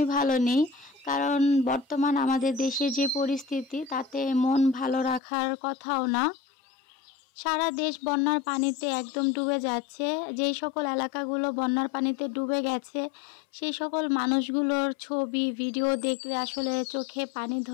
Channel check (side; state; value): right; drops out; at 5.2 s